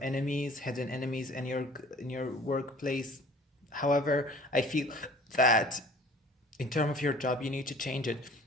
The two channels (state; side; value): normal; both; correlation 0.48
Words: enemies, hidden enemies in your workplace. However, I feel that in terms of your job, you need to change it.